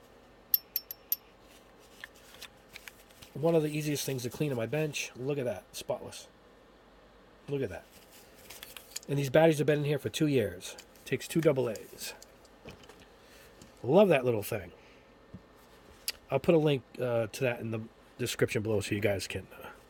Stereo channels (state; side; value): identical; both; correlation 1.00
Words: One of the easiest things to clean on my bench. Look at that. Spotless. Look at that. And these batteries have been in here for 2 years. Takes 2 AA's. Love that little thing. I'll put a link to that in the description below so you guys can